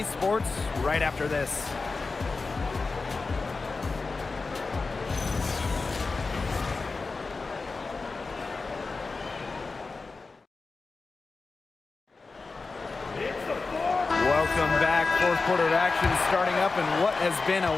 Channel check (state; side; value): quieter; right; 4.0 dB